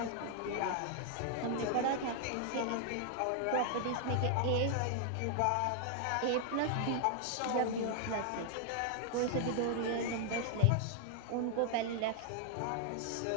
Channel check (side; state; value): both; different; correlation 0.00